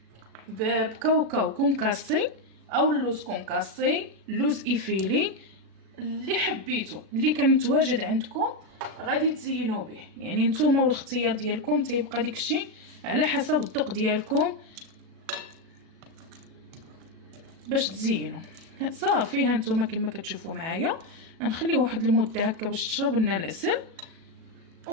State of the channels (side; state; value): left; late; 37 ms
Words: بكاوكاو كونكاسي او اللوز كونكاسي، اللوز ايفيلي، اللي حبيتو اللي كان متواجد عندكم غادي تزينوا به، يعني نتوما والاختيار ديالكم، تيبقى داكشي على حسب الذوق ديالكم باش تزينوا. صافي هانتوما كما كتشوفوا معايا غنخليه واحد المده هكا باش تشرب لنا العسل